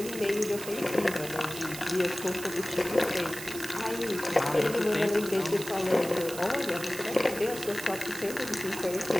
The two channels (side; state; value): right; noise; hiss, 10 dB below the sound